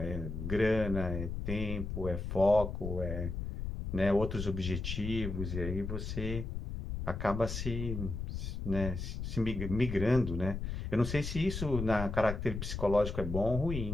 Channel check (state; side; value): noise; left; rumble, 5 dB below the sound